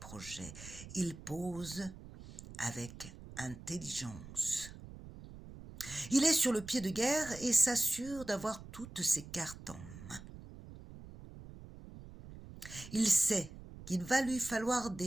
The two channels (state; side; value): noise; right; rumble, 15 dB below the sound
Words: Il pose avec intelligence. Il est sur le pied de guerre et s'assure d'avoir toutes ses cartes en main. Il sait qu'il va lui falloir